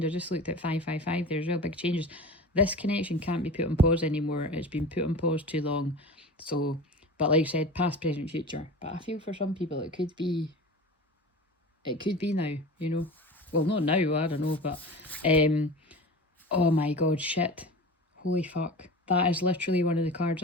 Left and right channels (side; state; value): both; normal; correlation 0.34